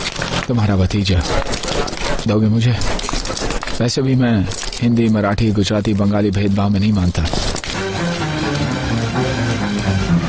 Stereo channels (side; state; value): both; identical; correlation 1.00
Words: तुम्हारा भतीजा। दोगे मुझे? वैसे भी मैं हिंदी, मराठी, गुजराती, बंगाली भेदभाव में नहीं मानता।